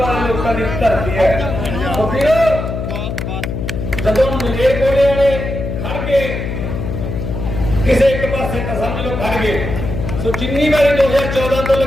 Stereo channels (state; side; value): noise; left; hum, 4 dB below the sound